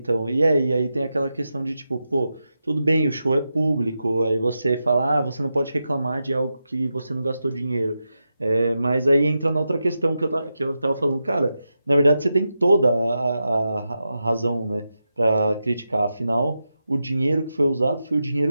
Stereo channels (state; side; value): inverted; both; correlation -0.89